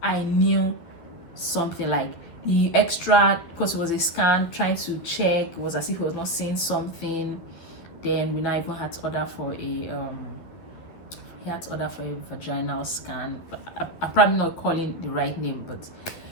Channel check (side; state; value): right; late; 12 ms